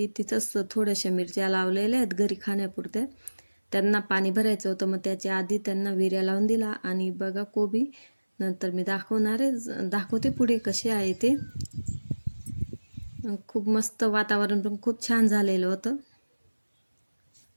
तिथंच थोड्याशा मिरच्या लावलेल्या आहेत घरी खाण्यापुरत्या. त्यांना पाणी भरायचं होतं, मग त्याच्या आधी त्यांना विऱ्या लावून दिला. आणि बघा कोबी नंतर मी दाखवते पुढे कसे आहे ते. खूप मस्त वातावरण पण खूप छान झालेलं होतं.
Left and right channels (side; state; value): both; inverted; correlation -1.00